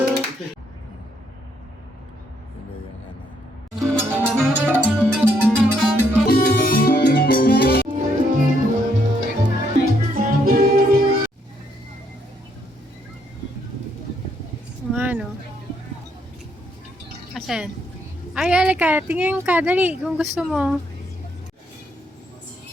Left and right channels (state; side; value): normal; both; correlation 0.73